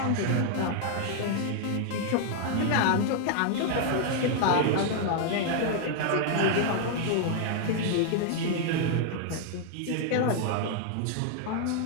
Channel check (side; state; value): both; different; correlation 0.00